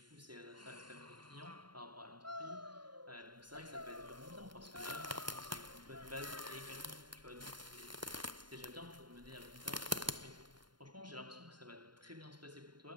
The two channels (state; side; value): late; left; 0.71 ms